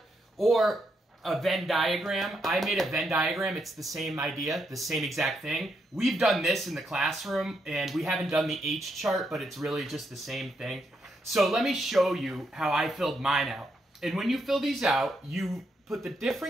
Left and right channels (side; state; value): both; normal; correlation 0.79